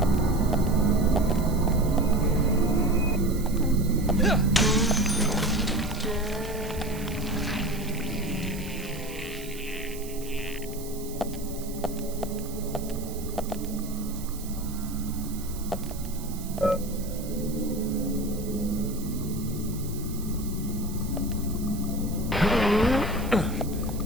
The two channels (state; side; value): noise; right; hiss, 15 dB below the sound